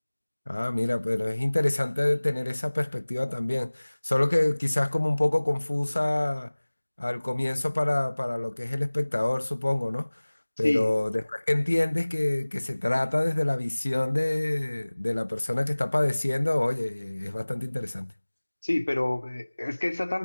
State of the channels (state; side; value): inverted; both; correlation -1.00